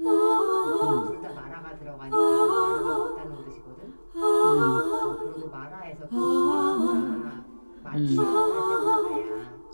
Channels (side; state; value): both; inverted; correlation -1.00